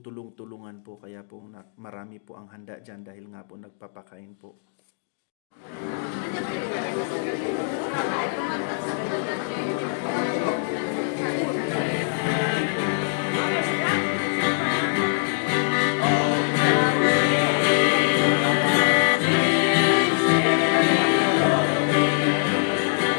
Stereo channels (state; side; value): silent; right; digital silence